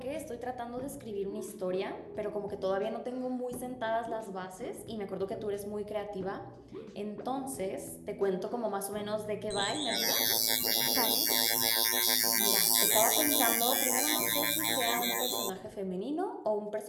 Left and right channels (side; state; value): both; identical; correlation 1.00